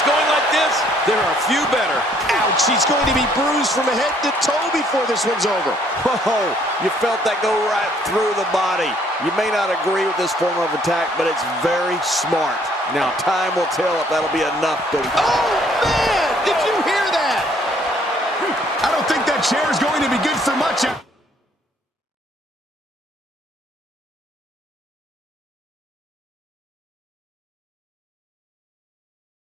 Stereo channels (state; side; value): normal; both; correlation 0.64